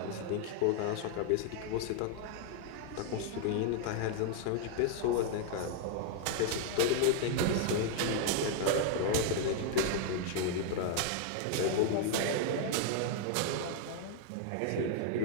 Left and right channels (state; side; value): different; both; correlation 0.00